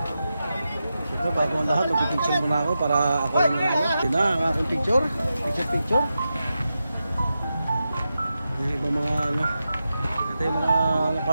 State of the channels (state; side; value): inverted; both; correlation -0.90